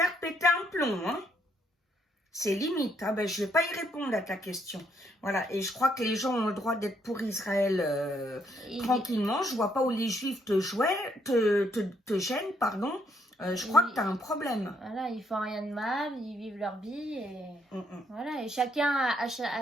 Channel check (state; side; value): normal; both; correlation 0.72